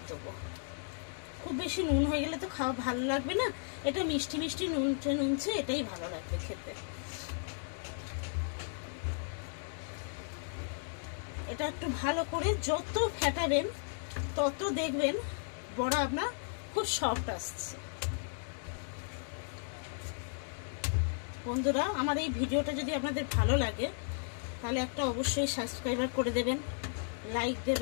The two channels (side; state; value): right; silent; digital silence